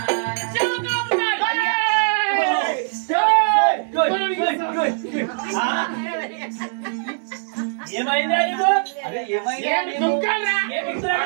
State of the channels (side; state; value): left; silent; 65 dB below the other